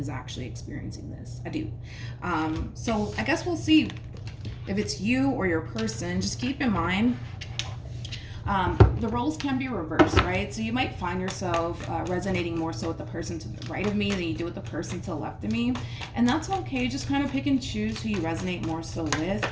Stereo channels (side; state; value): both; identical; correlation 1.00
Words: actually experiencing this. I do. So I guess we'll see if it's you or your person. Just keep in mind, the roles can be reversed, right? So you might find yourself resonating more so with the person to the right of me than you do with the person to the left of me. And that's okay. Just kind of pick and choose who you resonate more so with.